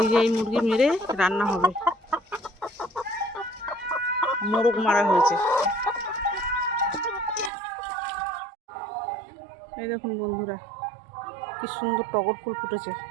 যে এই মুরগি মেরে রান্না হবে, মোরগ মারা হয়েছে। এই দেখুন বন্ধুরা কি সুন্দর টগর ফুল ফুটেছে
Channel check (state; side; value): drops out; left; at 7.5 s